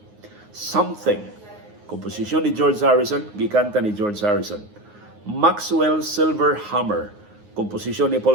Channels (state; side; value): late; left; 9.6 ms